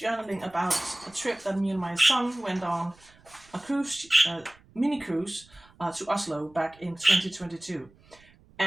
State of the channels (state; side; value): noise; right; rumble, 28 dB below the sound